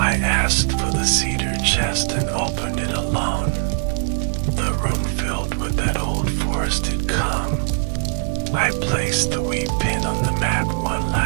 asked for the cedar chest and opened it alone. The room filled with that old forested calm. I placed the wee pin on the map one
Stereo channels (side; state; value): left; silent; digital silence